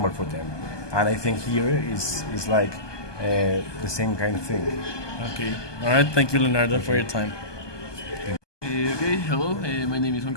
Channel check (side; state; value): right; late; 1.2 ms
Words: for them. And I think here is like the same kind of thing. Okay. All right. Thank you, Leonardo, for your time. Okay, hello. My name is Juan